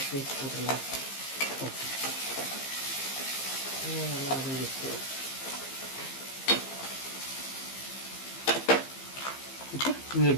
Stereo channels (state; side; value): late; right; 15 ms